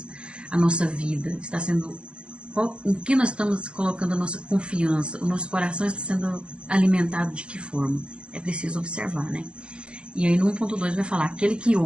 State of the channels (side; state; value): left; late; 0.057 ms